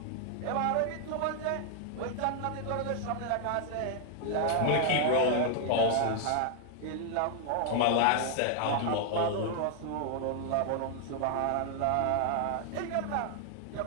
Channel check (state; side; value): different; both; correlation 0.00